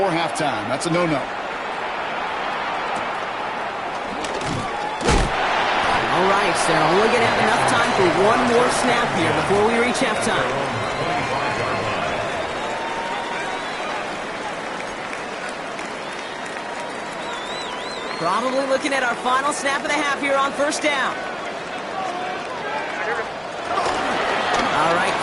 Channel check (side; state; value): both; identical; correlation 1.00